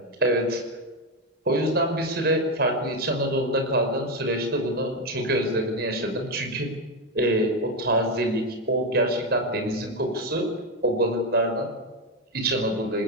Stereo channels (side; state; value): both; normal; correlation 0.10